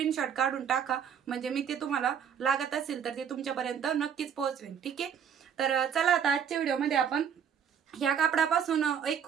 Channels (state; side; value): quieter; left; 8.0 dB